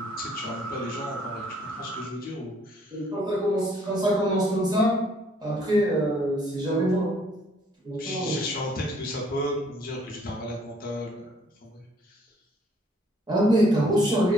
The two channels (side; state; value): both; normal; correlation 0.63